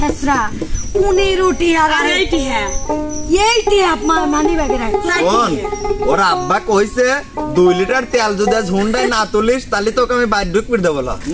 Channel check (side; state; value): both; identical; correlation 1.00